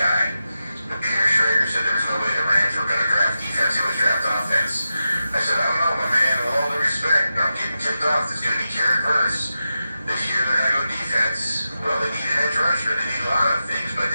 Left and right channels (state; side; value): inverted; both; correlation -0.90